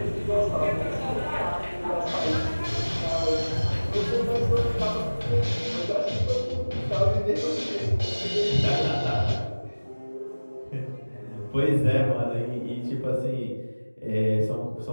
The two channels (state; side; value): inverted; both; correlation -1.00